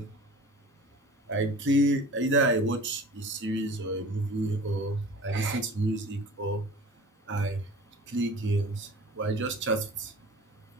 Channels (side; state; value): both; normal; correlation 0.42